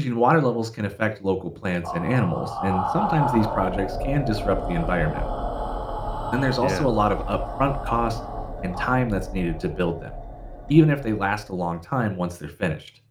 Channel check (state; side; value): identical; both; correlation 1.00